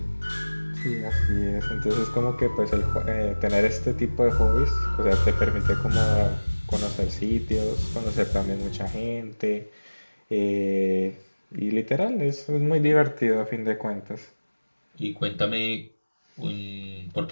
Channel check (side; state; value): both; inverted; correlation -1.00